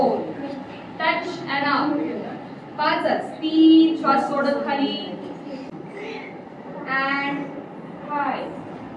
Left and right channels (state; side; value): identical; both; correlation 1.00